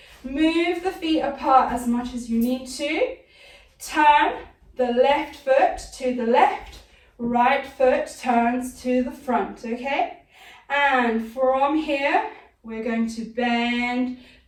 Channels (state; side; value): identical; both; correlation 1.00